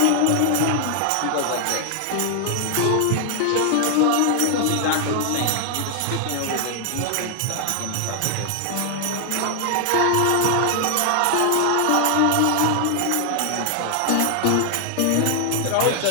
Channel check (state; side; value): different; both; correlation 0.00